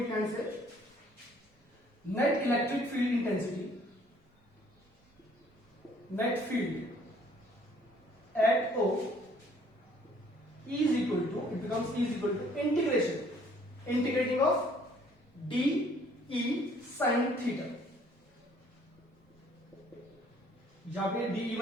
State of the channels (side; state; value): both; normal; correlation 0.60